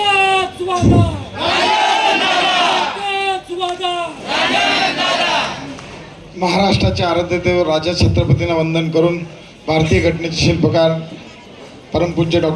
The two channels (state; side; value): identical; both; correlation 1.00